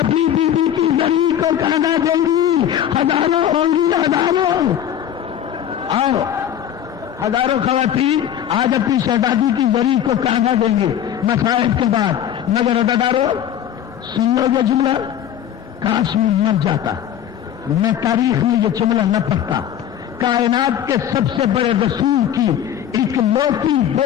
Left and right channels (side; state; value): right; quieter; 10.2 dB